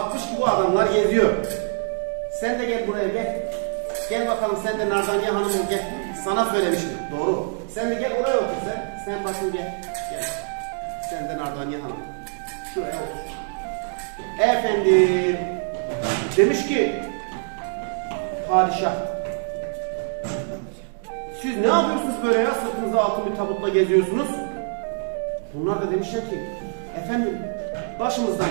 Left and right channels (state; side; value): silent; left; 62 dB below the other